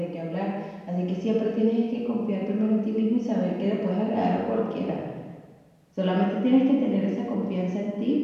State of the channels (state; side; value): identical; both; correlation 1.00